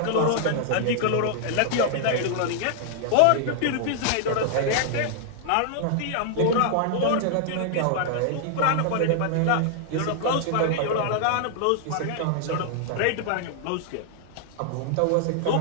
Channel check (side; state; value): both; different; correlation -0.01